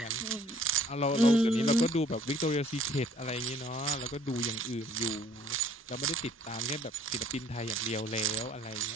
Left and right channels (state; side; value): normal; both; correlation 0.57